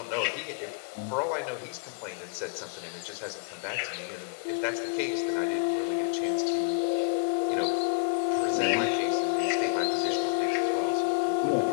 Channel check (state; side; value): quieter; right; 37.6 dB